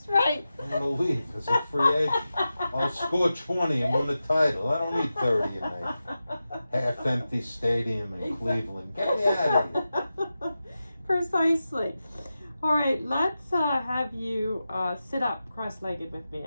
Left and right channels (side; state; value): both; inverted; correlation -0.92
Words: right. I'm gonna leave as a free agent. I'll score 20 and win the title. I don't need 30 in a half-empty stadium in Cleveland. Get me out of here. Precisely. All right, let's have you sit up cross-legged with me,